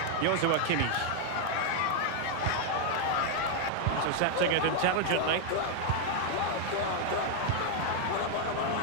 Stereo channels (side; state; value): both; different; correlation 0.00